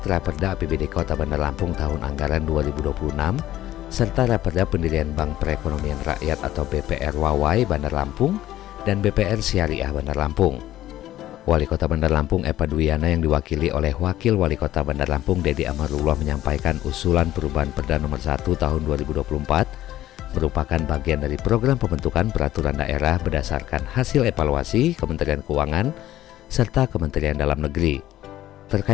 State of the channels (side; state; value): right; quieter; 13.9 dB